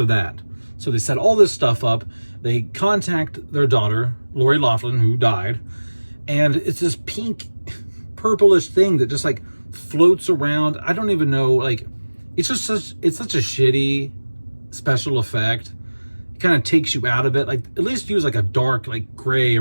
that. So they set all this stuff up. They contact their daughter, Lori Loughlin, who died, and it's this pink, purplish thing that just like floats around. I don't even know, like, it's such a shitty special effect. It kind of takes you out of it. Like, at least use like a dark, like gray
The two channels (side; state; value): both; inverted; correlation -1.00